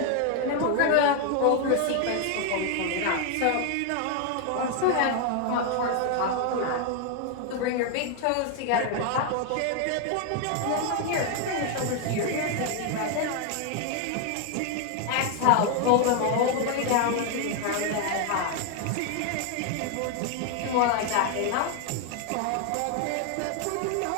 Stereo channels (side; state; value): both; different; correlation 0.01